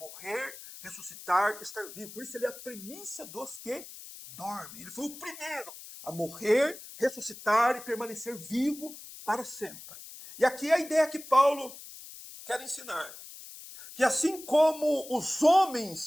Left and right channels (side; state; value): left; noise; hiss, 15 dB below the sound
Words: ressuscitar, estar vivo. Por isso ele é a primícia dos que dormem. Ele foi o primeiro a morrer, ressuscitar e permanecer vivo para sempre. E aqui é a ideia que Paulo quer ensinar. Que assim como os